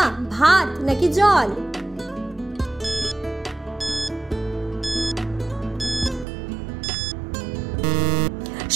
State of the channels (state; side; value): drops out; left; at 6.2 s